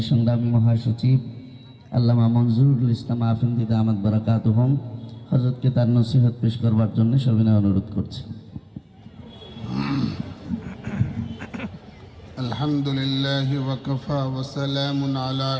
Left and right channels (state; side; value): identical; both; correlation 1.00